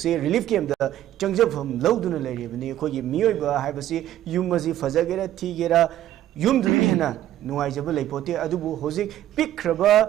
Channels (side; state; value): left; quieter; 12.7 dB